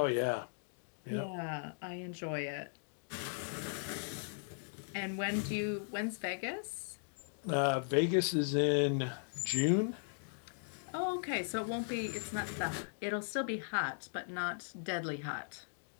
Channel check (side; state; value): right; silent; digital silence